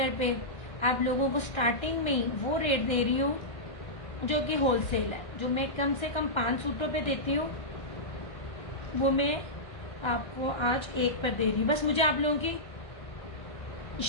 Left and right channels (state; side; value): late; right; 1.3 ms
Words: पे आप लोगों को स्टार्टिंग में ही वो रेट दे रही हूँ जो कि होलसेल है। जो मैं कम से कम 5 सूटों पे देती हूँ वो मैं आपको आज एक पर दे रही हूँ। बस मुझे आप लोगों की